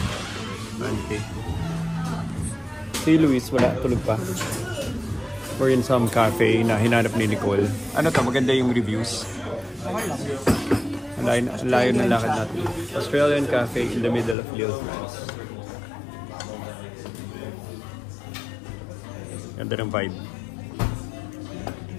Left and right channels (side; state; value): right; drops out; at 14.4 s